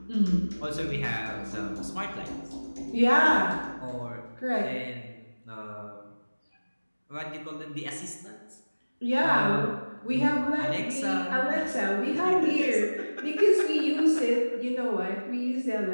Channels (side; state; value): both; inverted; correlation -1.00